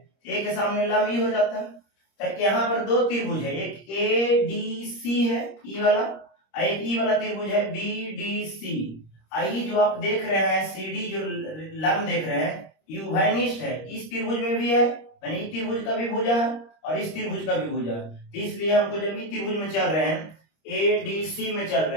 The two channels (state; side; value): late; right; 26 ms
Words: ए के सामने लंब ई हो जाता है, तो यहाँ पर दो त्रिभुज है, एक ए डी सी है ई वाला, और एक ई वाला त्रिभुज है बी डी सी। आई जो आप देख रहे हैं सी डी जो लंब देख रहे हैं ये उभयनिष्ठ है, इस त्रिभुज में भी है मैंने इस त्रिभुज का भी भुजा है और इस त्रिभुज का भी भुजा है, तो इसलिए हमको जब ये त्रिभुज में चल रहे हैं, एडीसी में चल